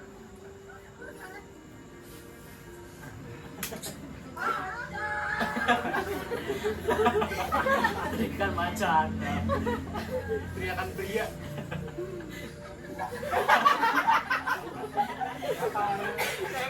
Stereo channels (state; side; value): identical; both; correlation 1.00